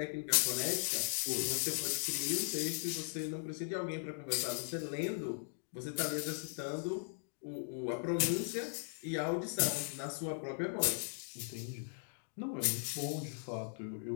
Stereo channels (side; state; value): right; silent; digital silence